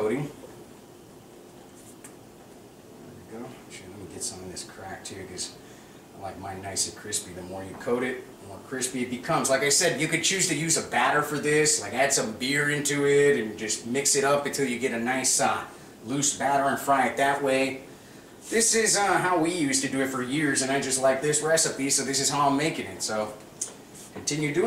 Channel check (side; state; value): both; identical; correlation 1.00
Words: There we go. Actually, let me get some of this cracked too, because I like mine nice and crispy. The more you coat it, the more crispy it becomes. Like I said, you could choose to use a batter for this, like add some beer into it and just mix it up until you get a nice loose batter and fry it that way. This is how we used to do it for years, and I just like this recipe, so this is how I'm making it. So continue